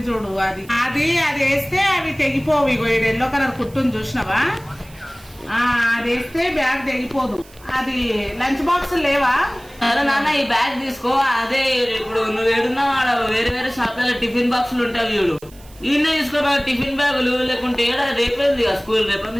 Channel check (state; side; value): noise; right; hiss, 24 dB below the sound